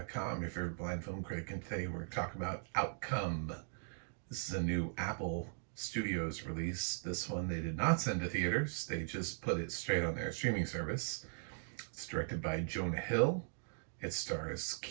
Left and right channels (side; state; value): left; silent; digital silence